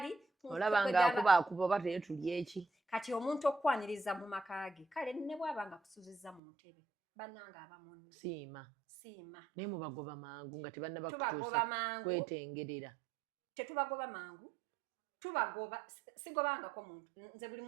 olaba ng'akuba oba teyo tuli eki kati omuntu okwaniriza mu maka ge kale ne bw'aba nga kusuzizza mu ntebe bannanga aba munno siima naye mubagoba mangu nga tubagoba mangu kwetengerera tetubagoba mangu tubagoba sigobangako muntu nze buli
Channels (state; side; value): drops out; left; at 6.4 s